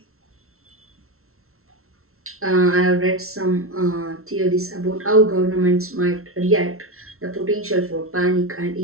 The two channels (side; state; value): left; late; 0.62 ms